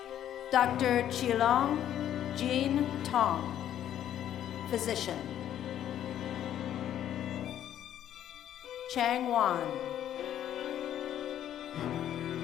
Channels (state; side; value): quieter; right; 11.0 dB